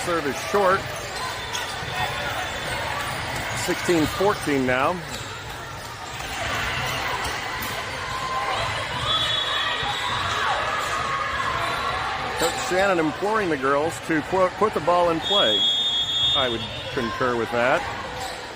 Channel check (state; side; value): identical; both; correlation 1.00